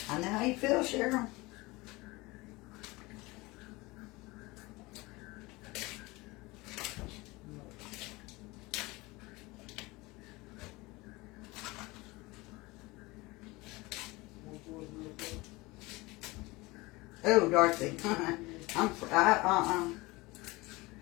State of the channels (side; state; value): right; quieter; 22.5 dB